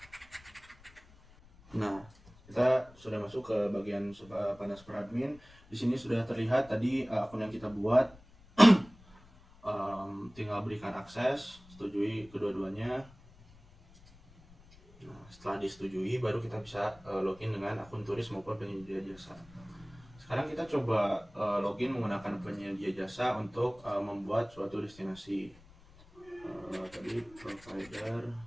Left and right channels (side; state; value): left; noise; rumble, 24 dB below the sound